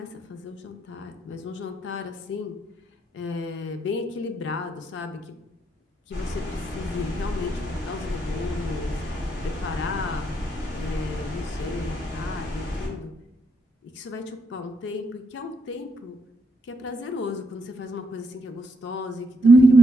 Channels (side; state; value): both; normal; correlation 0.77